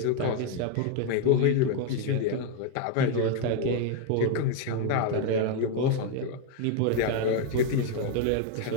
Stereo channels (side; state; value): both; different; correlation 0.01